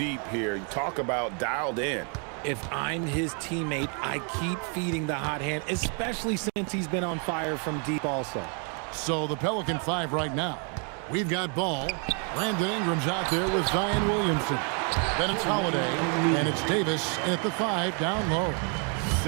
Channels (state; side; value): quieter; left; 38.8 dB